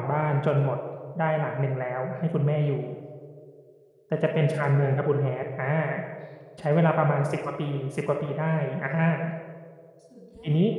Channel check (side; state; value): both; identical; correlation 1.00